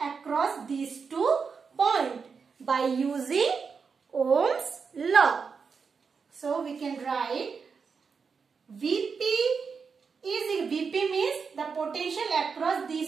across these 2 points by using Ohm's law. So we can write Vp means the potential across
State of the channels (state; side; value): quieter; left; 5.5 dB